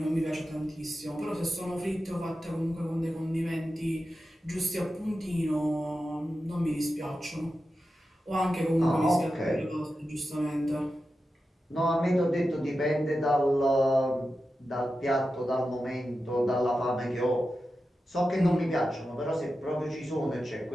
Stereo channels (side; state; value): both; normal; correlation 0.91